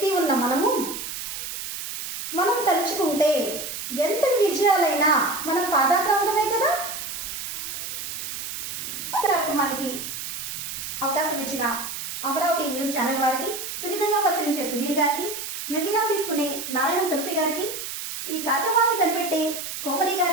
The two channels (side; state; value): right; noise; hiss, 6 dB below the sound